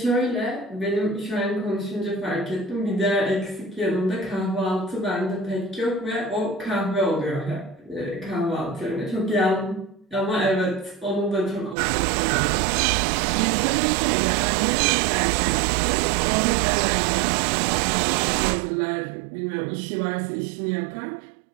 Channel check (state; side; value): drops out; left; at 11.8 s